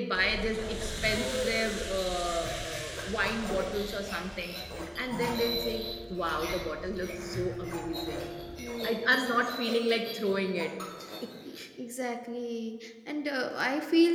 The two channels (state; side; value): identical; both; correlation 1.00